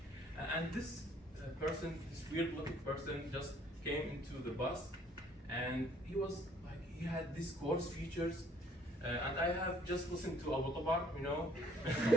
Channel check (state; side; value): normal; both; correlation 0.64